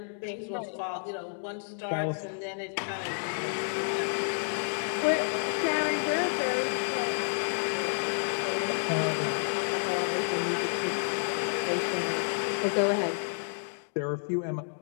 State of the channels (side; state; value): right; silent; digital silence